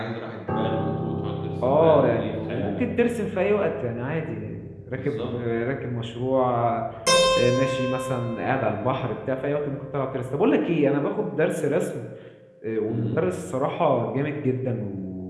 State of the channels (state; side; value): identical; both; correlation 1.00